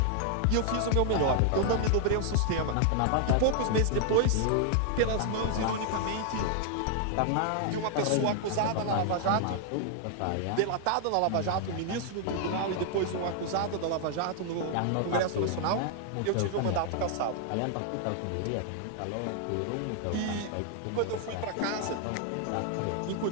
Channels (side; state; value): both; different; correlation 0.00